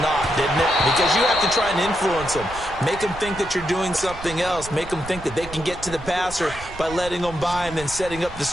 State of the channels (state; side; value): noise; right; rumble, 14 dB below the sound